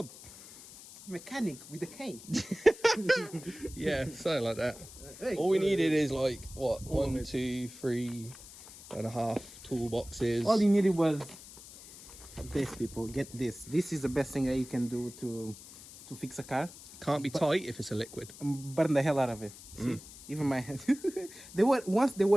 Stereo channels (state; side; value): noise; left; hiss, 17 dB below the sound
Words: Mechanic with a K. Yeah, something like that. Hey, All we needed is like, what, 1, 2, 3 and a half toolboxes. All you needed was this, people. Get this. This is the best thing that you can do to fix a car. Can't be tight if it's a liquid. Burn the hell out of it. See? Even my hands. They were